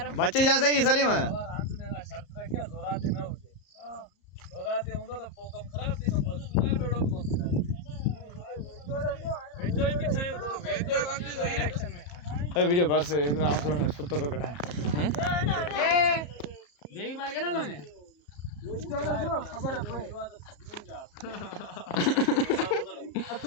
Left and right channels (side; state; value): right; late; 34 ms